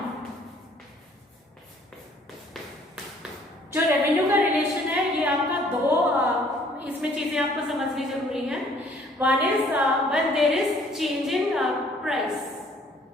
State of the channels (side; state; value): both; normal; correlation 0.59